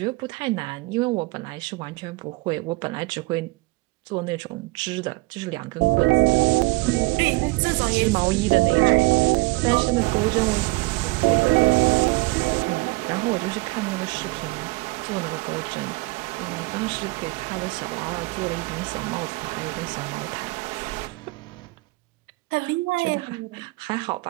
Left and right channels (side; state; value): left; quieter; 23.7 dB